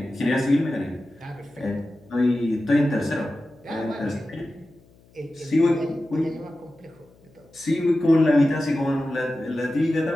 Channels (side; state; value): left; noise; hum, 29 dB below the sound